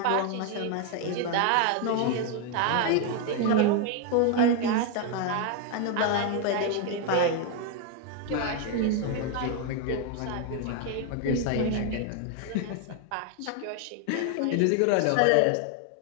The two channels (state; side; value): different; both; correlation 0.01